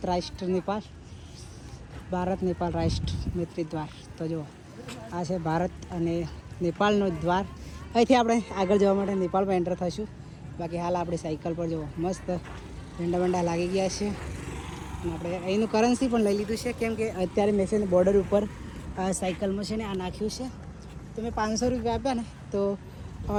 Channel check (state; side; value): identical; both; correlation 1.00